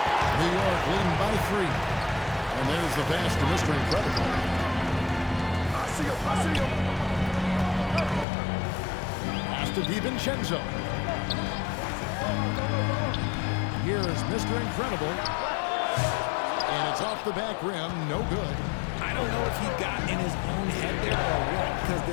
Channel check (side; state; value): right; drops out; at 8.2 s